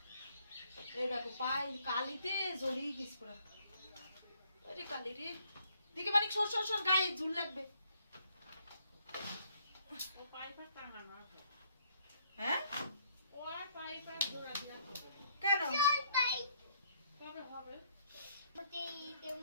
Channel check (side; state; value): both; inverted; correlation -0.66